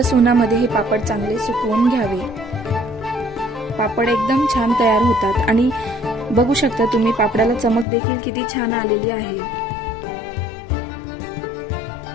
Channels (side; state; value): right; drops out; at 7.9 s